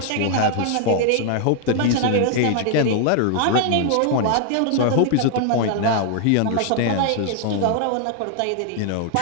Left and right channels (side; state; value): both; different; correlation 0.00